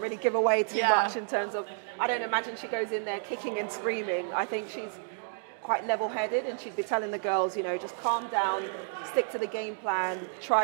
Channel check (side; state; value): left; silent; digital silence